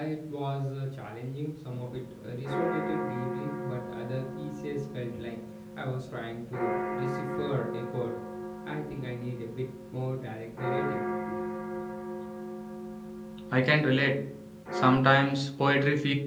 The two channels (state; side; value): identical; both; correlation 1.00